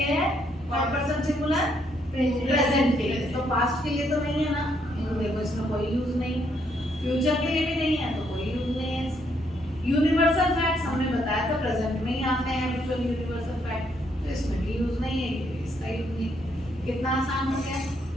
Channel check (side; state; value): both; normal; correlation 0.73